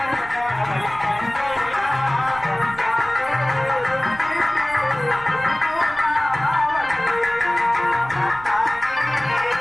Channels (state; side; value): noise; right; rumble, 20 dB below the sound